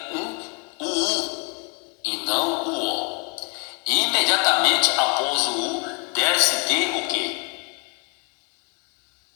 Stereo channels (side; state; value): right; quieter; 32.9 dB